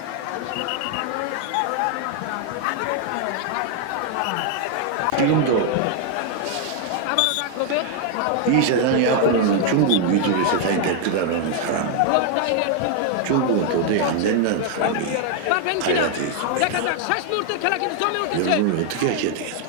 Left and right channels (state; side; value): different; both; correlation 0.00